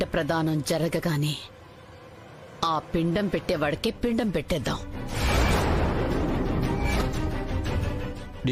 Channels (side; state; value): both; identical; correlation 1.00